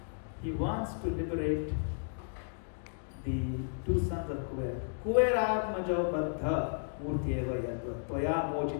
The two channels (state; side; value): silent; right; digital silence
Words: He wants to liberate the two sons of Kuver. Kuver Atmajo Baddha Murtyeva Yadva Toya